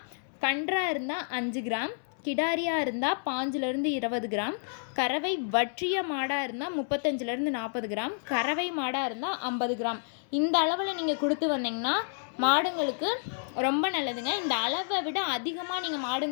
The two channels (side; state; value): right; silent; 58 dB below the other